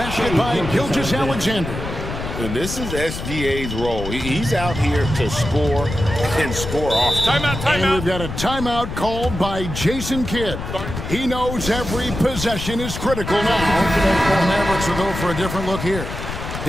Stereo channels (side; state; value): left; noise; rumble, 7 dB below the sound